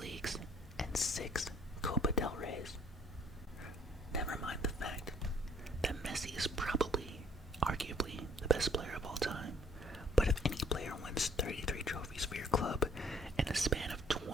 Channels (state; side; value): normal; both; correlation 0.60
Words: Leagues, and 6 Copa del Reys. Never mind the fact that Messi is probably, arguably, the best player of all time, but if any player wins 33 trophies for your club in a span of